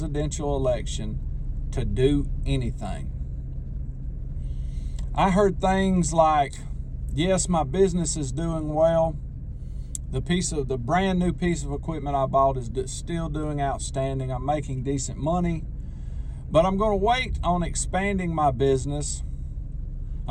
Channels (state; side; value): identical; both; correlation 1.00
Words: election, to do anything. I heard things like, yes, my business is doing well. The brand new piece of equipment I bought is still doing outstanding. I'm making decent money, but I'm going to wait on expanding my business.